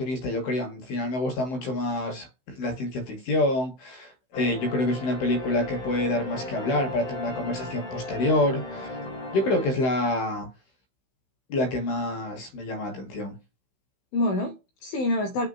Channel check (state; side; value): late; right; 16 ms